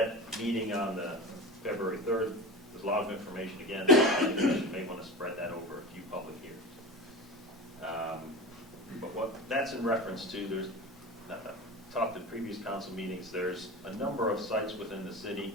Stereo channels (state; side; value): normal; both; correlation 0.29